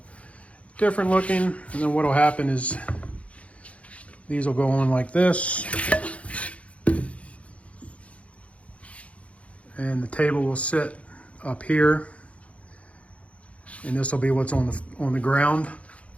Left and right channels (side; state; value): right; late; 0.064 ms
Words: different looking. And then what will happen is these will go on like this. And the table will sit up here. And this will be what's on the ground.